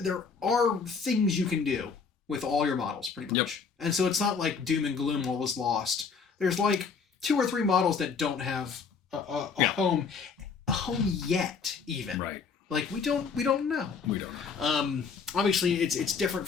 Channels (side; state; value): right; quieter; 5.5 dB